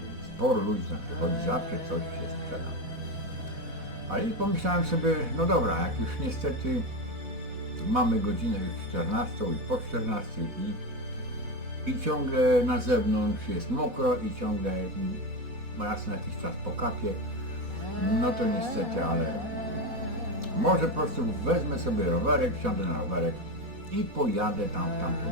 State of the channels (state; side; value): late; left; 4.1 ms